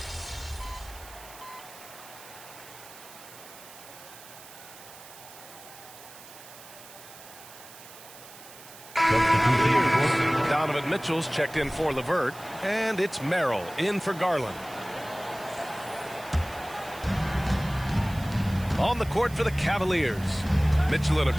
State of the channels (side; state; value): right; noise; hiss, 18 dB below the sound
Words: Donovan Mitchell's checked in for LeVert, and it's Merrill in for Garland. On the court for the Cavaliers, Mitchell and